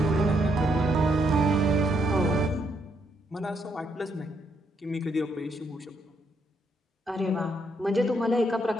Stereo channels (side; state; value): both; normal; correlation 0.75